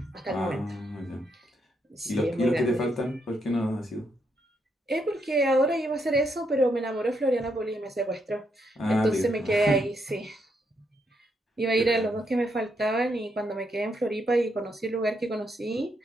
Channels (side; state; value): both; normal; correlation 0.78